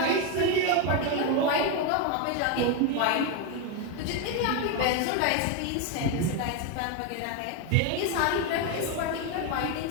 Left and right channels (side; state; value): both; different; correlation 0.02